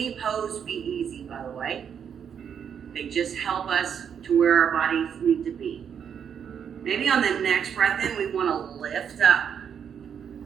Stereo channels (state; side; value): quieter; left; 7.9 dB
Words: pose be easy, by the way. They just help us to where our bodies need to be. Maybe on the next breath in, we want to lift up